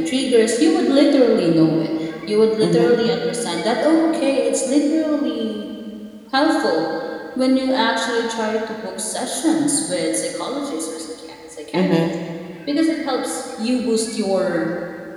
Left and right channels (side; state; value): both; identical; correlation 1.00